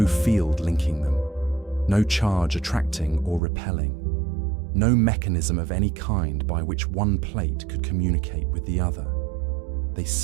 field linking them, no charge attracting or repelling, no mechanism of any kind by which one plate could communicate with the other. They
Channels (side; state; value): left; drops out; at 3.4 s